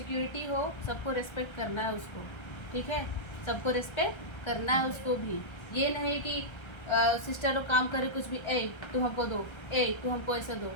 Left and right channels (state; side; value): late; right; 1.3 ms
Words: हो, सबको रिस्पेक्ट करना है उसको, ठीक है। सबको रिस्पेक्ट करना है उसको भी। ये नहीं कि सिस्टर लोग काम करे कुछ भी, ए तू हमको दो, ए तू हमको ऐसा दो,